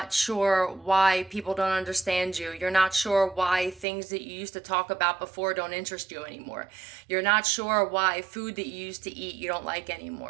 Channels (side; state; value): left; drops out; at 3.9 s